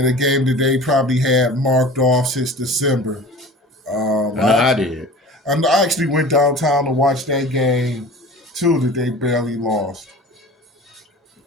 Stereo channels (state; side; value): normal; both; correlation 0.39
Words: a game that they probably had marked off since December. I did. I actually went downtown to watch that game too that they barely lost.